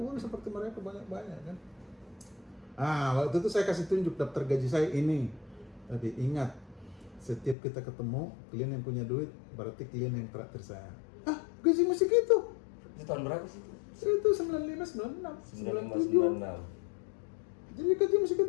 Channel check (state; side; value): drops out; right; at 7.6 s